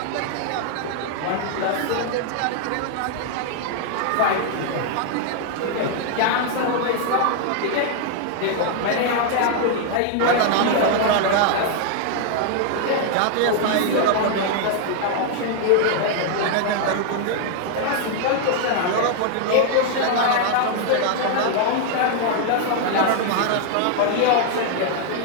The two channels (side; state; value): both; different; correlation 0.00